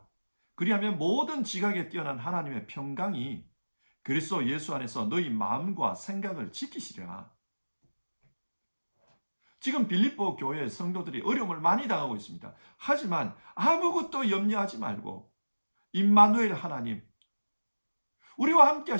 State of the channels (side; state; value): both; inverted; correlation -1.00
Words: 그리하면 모든 지각에 뛰어난 하나님의 평강이 그리스도 예수 안에서 너희 마음과 생각을 지키시리라. 지금 빌립보 교회 성도들이 어려움을 많이 당하고 있습니다. 하지만 아무것도 염려하지 말고 임마누엘 하나님, 우리와 함께